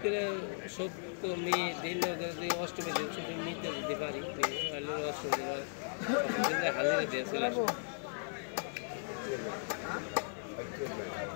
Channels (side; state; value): right; silent; 53 dB below the other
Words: করে সপ্তমী দিন অষ্টমী দিন ছুটি নিতে যেতে পারি, অষ্টমী দিন হাজিরা দিয়ে চলে আসবো।